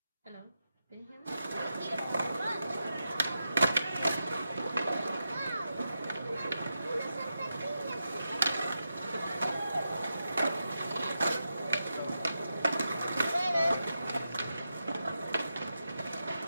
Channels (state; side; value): inverted; both; correlation -0.88